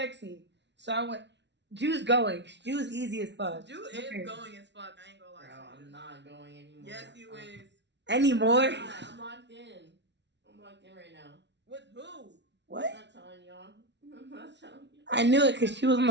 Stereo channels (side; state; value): left; late; 0.51 ms